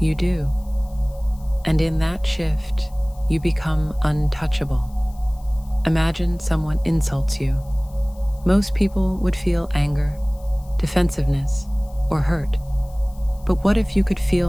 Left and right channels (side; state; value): left; noise; hiss, 28 dB below the sound